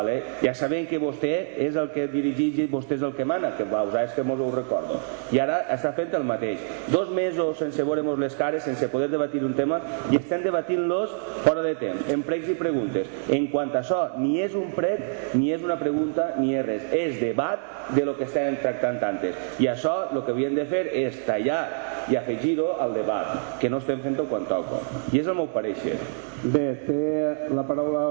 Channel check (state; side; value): silent; left; digital silence